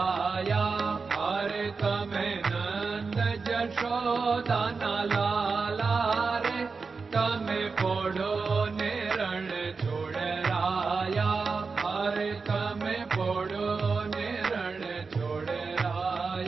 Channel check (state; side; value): quieter; left; 4.7 dB